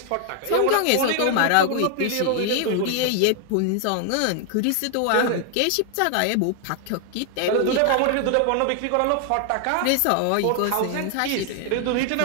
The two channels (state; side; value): different; both; correlation 0.00